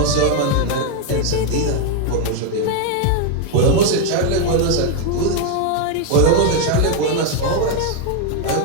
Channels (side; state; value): both; different; correlation 0.01